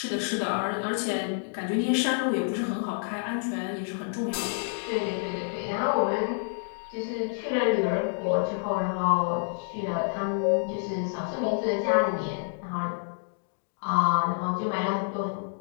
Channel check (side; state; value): right; silent; digital silence